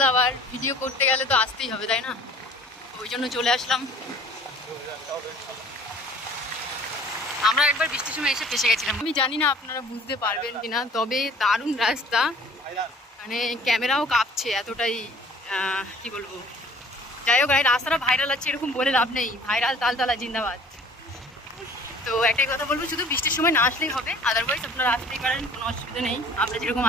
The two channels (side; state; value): both; normal; correlation 0.50